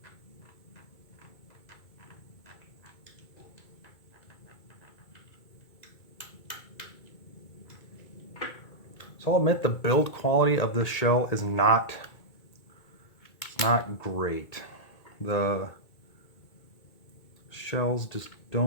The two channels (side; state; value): right; late; 2.2 ms